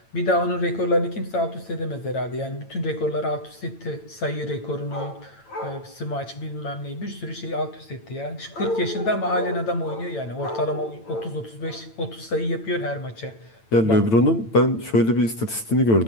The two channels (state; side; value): late; right; 8.9 ms